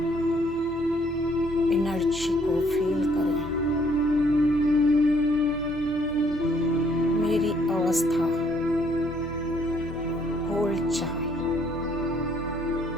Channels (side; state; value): left; noise; hum, 23 dB below the sound